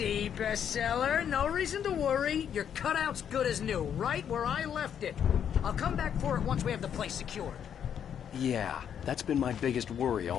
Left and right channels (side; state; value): right; quieter; 8.6 dB